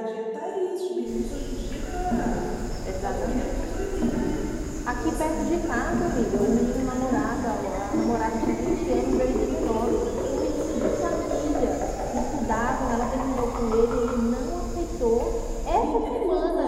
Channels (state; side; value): identical; both; correlation 1.00